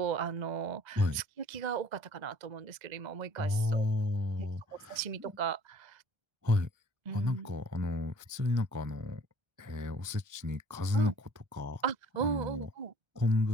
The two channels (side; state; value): left; late; 1.3 ms